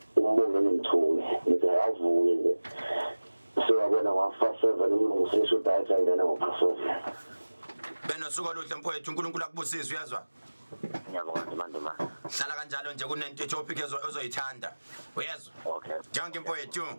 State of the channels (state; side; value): inverted; both; correlation -1.00